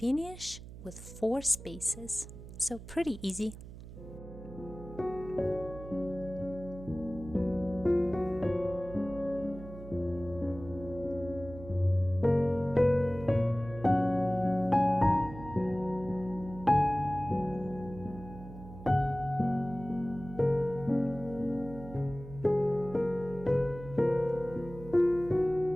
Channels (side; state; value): right; noise; hum, 14 dB below the sound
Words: with 4 spaces. So pretty easy.